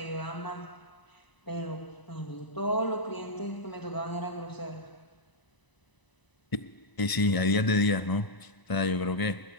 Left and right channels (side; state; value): right; late; 1.0 ms